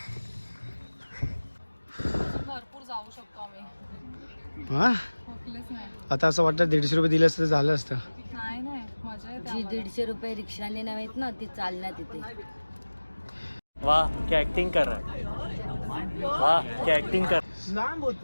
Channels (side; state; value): both; inverted; correlation -1.00